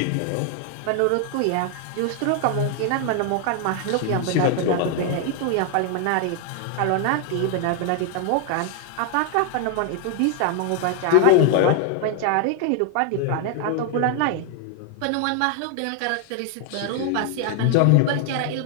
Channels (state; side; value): different; both; correlation 0.00